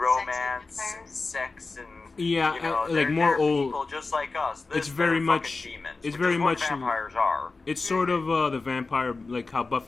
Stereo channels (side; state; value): right; quieter; 3.8 dB